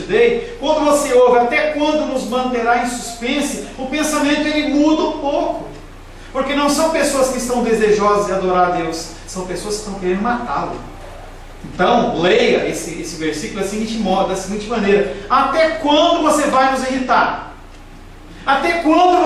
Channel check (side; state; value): both; identical; correlation 1.00